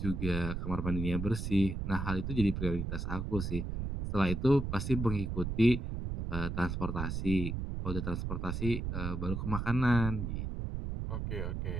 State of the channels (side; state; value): right; noise; rumble, 3 dB below the sound